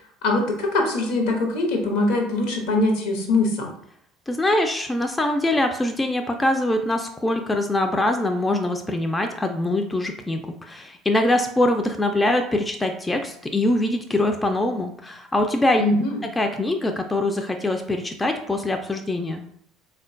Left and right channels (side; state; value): both; normal; correlation 0.71